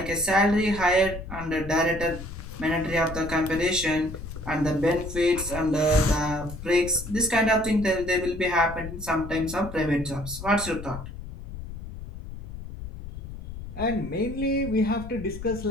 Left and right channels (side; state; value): left; noise; rumble, 11 dB below the sound